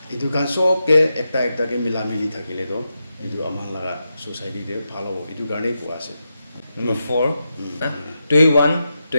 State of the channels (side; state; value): both; inverted; correlation -0.87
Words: এইটো কাৰণ চবকে একটাকে মিলা মিলি থাকিলেতো এইটো আমাৰ লগা ছ'চাইটিতে ভাল হ'ব এইটো কাৰণেই কোৱা আছে Number 4, Tuiwan,